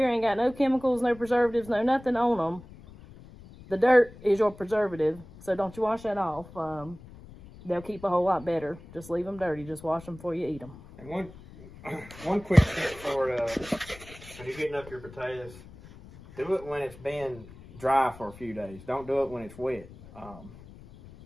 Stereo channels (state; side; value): noise; left; rumble, 19 dB below the sound